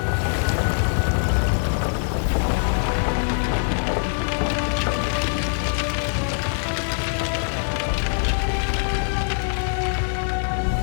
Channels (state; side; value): silent; right; 63 dB below the other